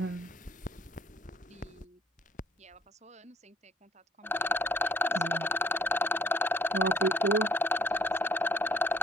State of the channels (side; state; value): both; normal; correlation 0.59